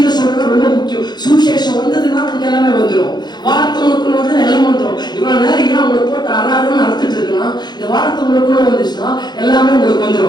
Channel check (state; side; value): late; right; 0.21 ms